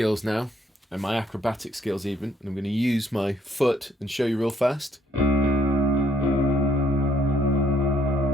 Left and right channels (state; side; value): normal; both; correlation 0.67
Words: now, and my acrobatic skills even. And I'm going to use my foot and show you real fast.